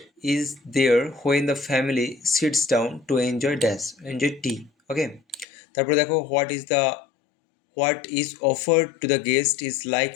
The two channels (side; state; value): right; drops out; at 5.5 s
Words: is there when the family sits down to enjoy dash, enjoy tea. Okay, তারপরে দেখো, what is offered to the guest is